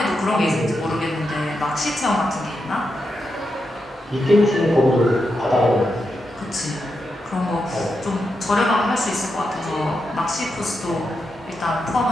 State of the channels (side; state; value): both; normal; correlation 0.86